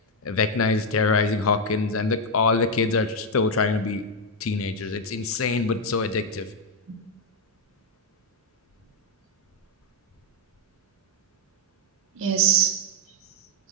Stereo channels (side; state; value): both; normal; correlation 0.02